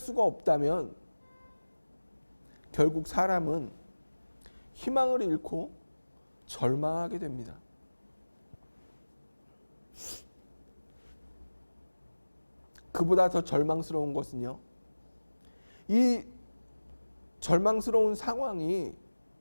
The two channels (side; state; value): both; inverted; correlation -1.00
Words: 없다면 결국 사람은 희망을 잃고 절망하게 됩니다. 그보다 더 절망스러운 것은요, 이 절망스러운 상황이